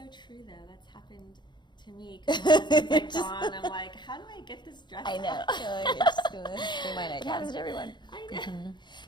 true, though. That's happened to me. Because my husband's like gone. I'm like, how do I get this dress? I know. It happens to everyone. I know.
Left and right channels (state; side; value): late; right; 0.22 ms